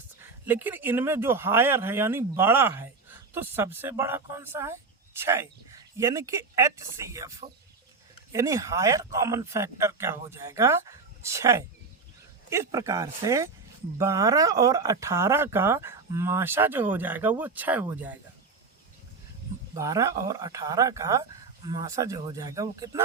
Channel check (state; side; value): quieter; left; 4.4 dB